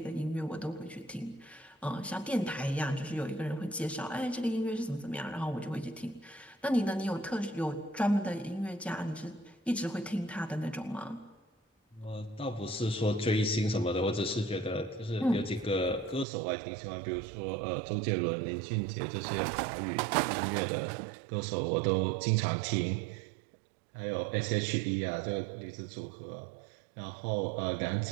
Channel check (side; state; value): left; drops out; at 16.2 s